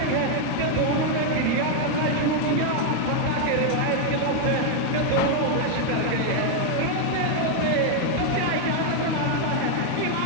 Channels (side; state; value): both; different; correlation 0.00